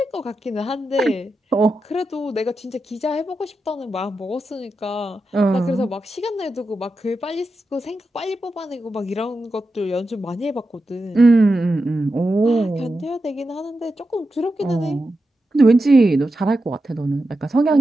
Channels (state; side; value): normal; both; correlation 0.89